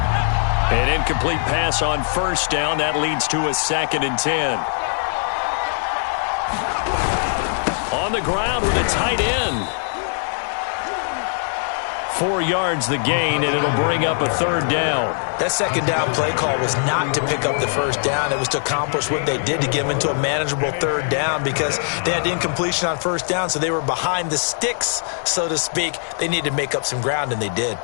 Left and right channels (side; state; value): right; silent; 65 dB below the other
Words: An incomplete pass on 1st down. That leads to a 2nd and 10. On the ground with a tight end. 4 yards the gain, and it'll bring up a 3rd down. That 2nd down play call was not to pick up the 1st down. It was to accomplish what they did, to get them into a manageable 3rd down, because they had incompletion on 1st down, so they were behind the sticks, so to speak. They needed to make up some ground, and they did.